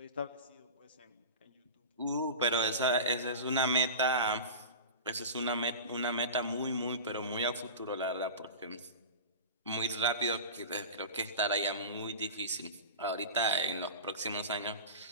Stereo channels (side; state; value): both; inverted; correlation -0.30